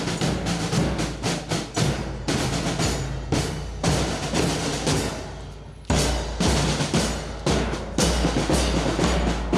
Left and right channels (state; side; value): identical; both; correlation 1.00